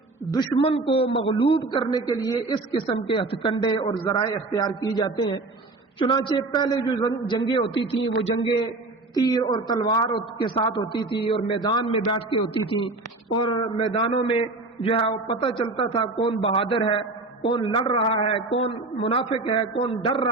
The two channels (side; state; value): left; quieter; 3.2 dB